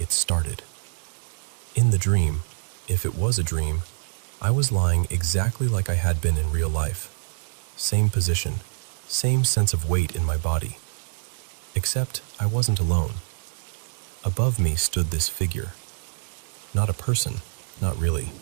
started. In the dream, if it was a dream, I was lying exactly like I had been in real life. Same position, same sense of weight in my body. Except I wasn't alone. Above me stood this figure. Not a person, not really.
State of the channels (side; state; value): left; silent; digital silence